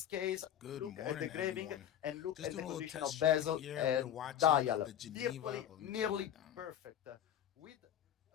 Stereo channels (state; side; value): quieter; right; 10.4 dB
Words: case, Good look at the morning, engraving everyone. and look Just at the doing a little condition of test stream bezel here. We're and watching dial. the Geneva. Virtually Let me turn nearly that down. perfect. With